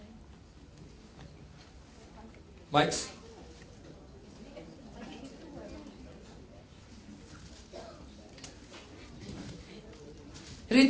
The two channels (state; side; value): identical; both; correlation 1.00